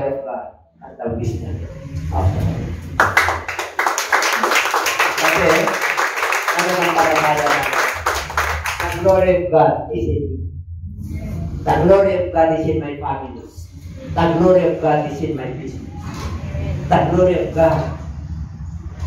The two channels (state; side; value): identical; both; correlation 1.00